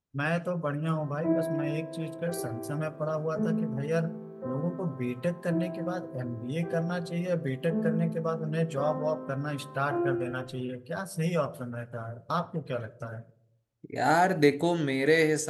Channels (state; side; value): identical; both; correlation 1.00